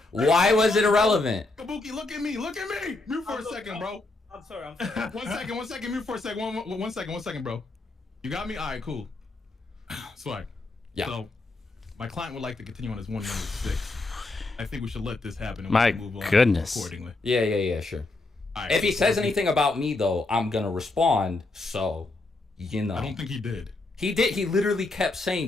Kabuki, look at me. Mute for a second, bro. I'm sorry. One second. Mute for a second. One second, bro. You got me? All right, cool. Swag. Yeah. So, my client would like to continue on his 1 minute 6. I think we should let this happen. And My move on goodness. accordingly. Yeah, sure. Right, if he says anything about me, though, I'm gonna respond. So, you know. I don't think he did. He did. He literally kept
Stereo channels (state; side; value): quieter; right; 3.2 dB